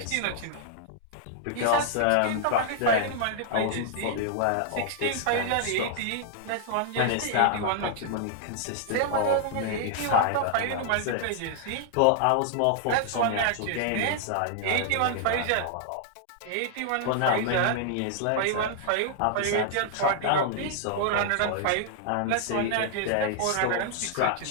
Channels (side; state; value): both; different; correlation -0.01